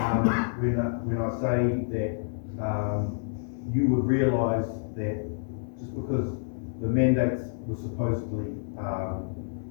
when I say that you would realise that just because the mandates were supposedly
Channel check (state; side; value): silent; right; 59 dB below the other